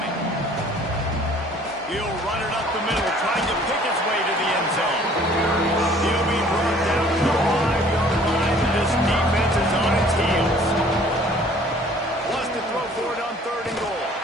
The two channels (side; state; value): both; normal; correlation 0.54